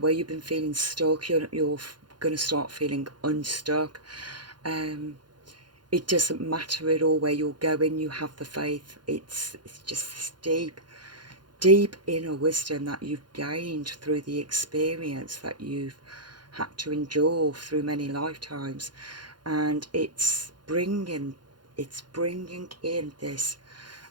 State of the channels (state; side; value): late; left; 0.71 ms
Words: you've been feeling stuck, you're going to start feeling unstuck. It doesn't matter at all where you're going. You have the faith. It's just this deep inner wisdom that you've gained through the experience that you've had to endure through many lifetimes, and it's bringing in this